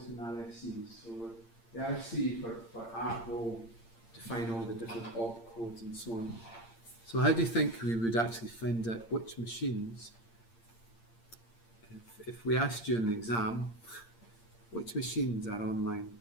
in RFCs. So the RFC for ARP will define all the different op codes and so on. So how do you think we would actually find out which machines, if we asked you in the exam, which machines are online?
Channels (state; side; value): late; right; 8.7 ms